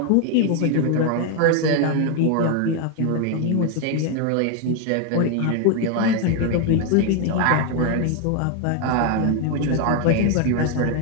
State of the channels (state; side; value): different; both; correlation 0.01